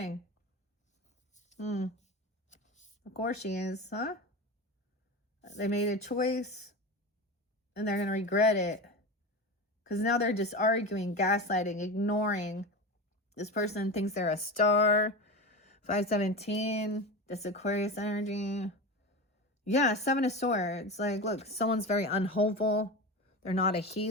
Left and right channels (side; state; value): both; normal; correlation 0.25